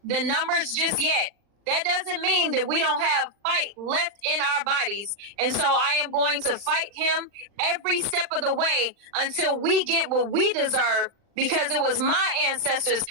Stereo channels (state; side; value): late; left; 40 ms